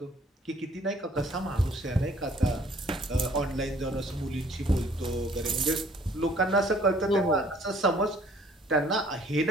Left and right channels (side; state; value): both; normal; correlation 0.58